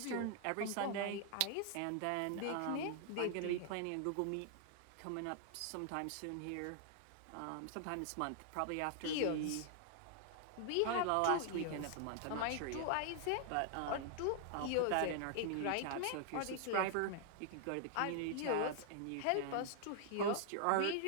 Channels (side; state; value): both; different; correlation -0.01